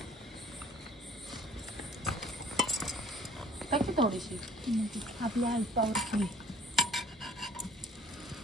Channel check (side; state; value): both; normal; correlation 0.54